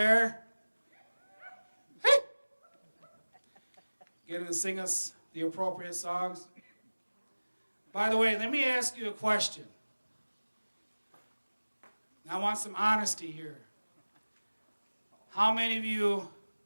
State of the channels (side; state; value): both; inverted; correlation -1.00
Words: Hey! Getting to sing us the appropriate songs. By the way, let me ask you a question. I want some honesty here. How many of you